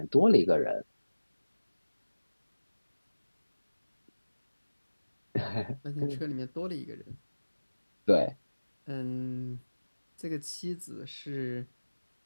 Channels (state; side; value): inverted; both; correlation -1.00